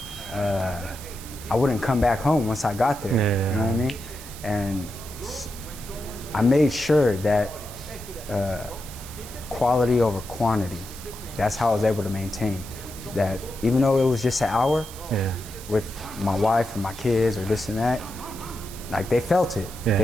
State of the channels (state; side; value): noise; right; hiss, 15 dB below the sound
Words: wouldn't come back home once I got there, you know what I mean? And I made sure that quality over quantity, that's how I was able to maintain that. Even though it was just an hour with my wife and my kids or this and that, like they felt it.